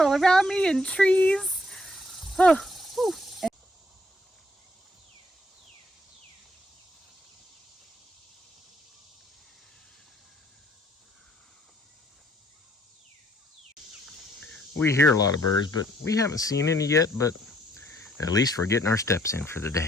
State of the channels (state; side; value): normal; both; correlation 0.67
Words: around me and trees. Oh, whew. We hear a lot of birds, but we haven't seen any yet, but at least we're getting our steps in for the